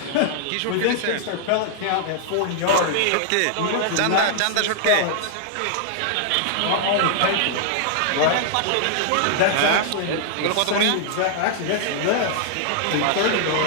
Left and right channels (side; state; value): both; different; correlation -0.01